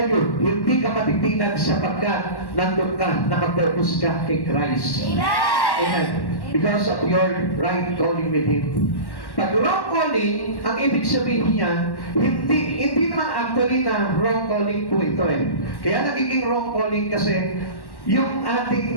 you, hindi ka matitinag sapagkat nandun ka, nakapurpose ka kay Christ. Amen. Because of your right calling with Him. Pag wrong calling, ang ibig sabihin niya, hindi naman actually na wrong calling po ito eh. Kaya nagiging wrong calling kasi yung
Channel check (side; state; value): right; late; 1.1 ms